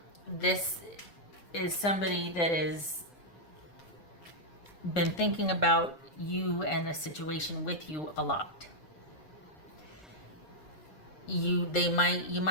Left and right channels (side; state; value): right; late; 6.9 ms